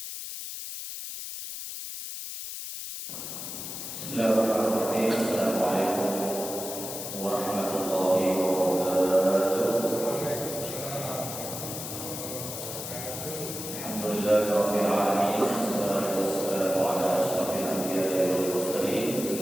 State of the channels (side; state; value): left; noise; hiss, 7 dB below the sound